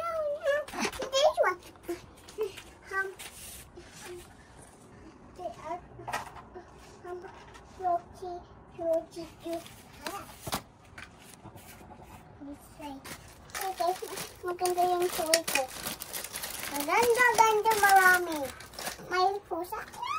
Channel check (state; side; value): identical; both; correlation 1.00